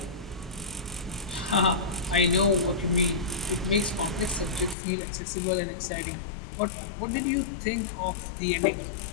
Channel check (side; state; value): right; drops out; at 4.8 s